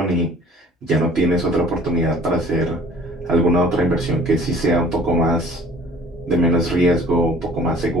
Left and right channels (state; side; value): normal; both; correlation 0.52